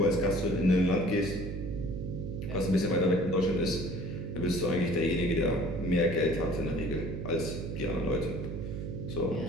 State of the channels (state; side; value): noise; right; hum, 5 dB below the sound